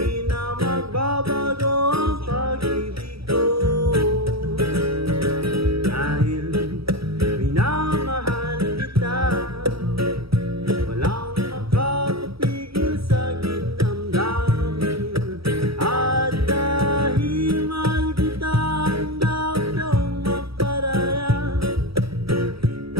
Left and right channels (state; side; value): late; left; 0.76 ms